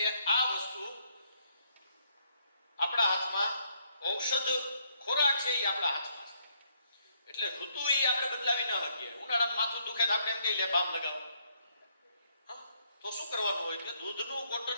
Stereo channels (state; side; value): inverted; both; correlation -0.70